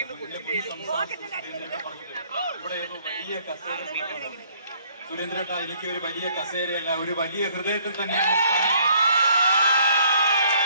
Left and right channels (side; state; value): both; inverted; correlation -0.62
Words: ഇവിടെ വലിയ കസേര. സുരേന്ദ്രേട്ട, എനിക്ക് ഒരു വലിയ കസേരയല്ല, ഒരു വലിയ ഹൃദയത്തിൽ തന്നെയാണ്.